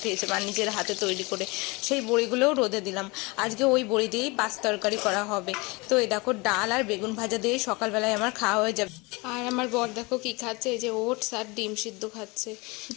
মা নিজের হাতে তৈরি করে, সেই বড়িগুলোও রোদে দিলাম। আজকে ওই বড়ি দিয়েই পাঁচ তরকারি করা হবে। তো এই দেখো ডাল আর বেগুন ভাজা দিয়ে সকালবেলায় আমার খাওয়া হয়ে যাবে। আর আমার বর দেখো কি খাচ্ছে, এই যে ওটস আর ডিম সিদ্ধ খাচ্ছে।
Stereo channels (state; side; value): quieter; right; 25.8 dB